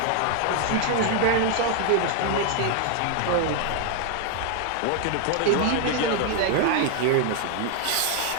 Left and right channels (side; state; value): both; different; correlation 0.00